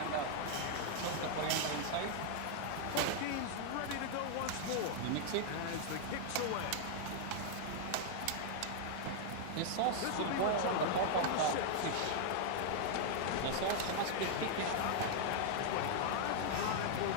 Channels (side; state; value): both; different; correlation 0.00